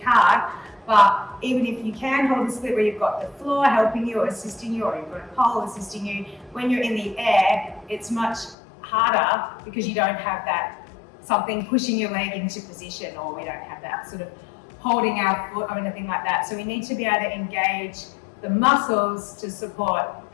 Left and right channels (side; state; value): right; drops out; at 8.6 s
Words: but even if you can hold a split where you've got the floor helping you or assisting you, or you've got a pole assisting you, when you're in the air, it's much harder because you don't have that something pushing your leg into position, or we don't have that sort of holding our foot or anything like that. So we need to be able to engage the muscles to support